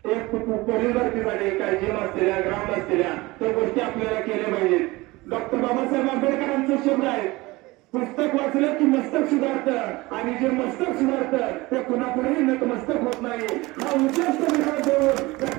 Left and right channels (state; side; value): quieter; left; 21.5 dB